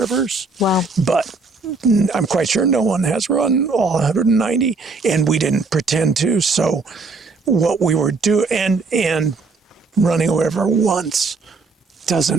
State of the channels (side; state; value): left; quieter; 4.1 dB